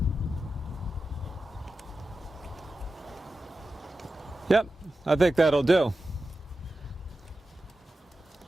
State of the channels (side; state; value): both; normal; correlation 0.92